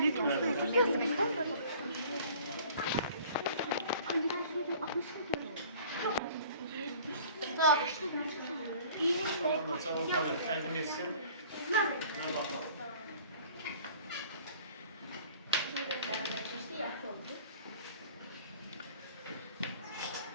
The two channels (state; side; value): inverted; both; correlation -0.49